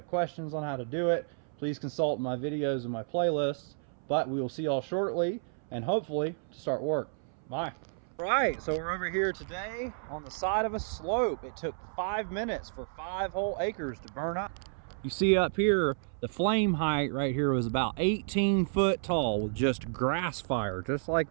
questions on how to do it. Please consult my videos and my playlists. But we will see y'all shortly and hopefully to start work. Bye. Right, so we're over here today on the side of a slope. It took 5 minutes for 5 whole acres to burn up. You see up here, the flame height right here was about 18 foot tall with just grass fire, just like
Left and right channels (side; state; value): left; silent; 57 dB below the other